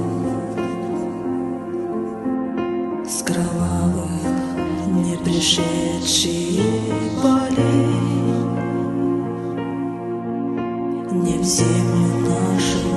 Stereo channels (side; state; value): both; identical; correlation 1.00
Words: с кровавых не пришедшие полей не в землю нашу